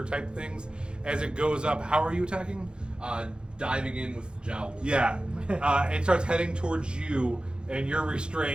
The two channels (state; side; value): late; left; 0.051 ms